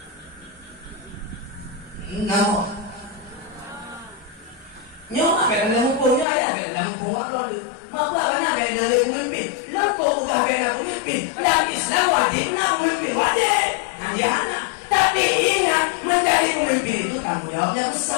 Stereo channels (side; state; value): right; drops out; at 6.2 s